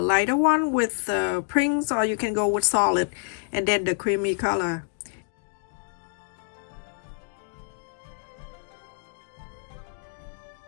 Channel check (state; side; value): silent; right; digital silence